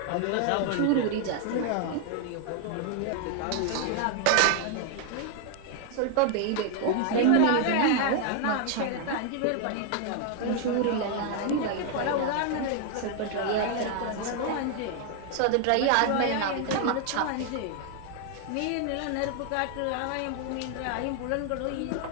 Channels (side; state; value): both; different; correlation 0.00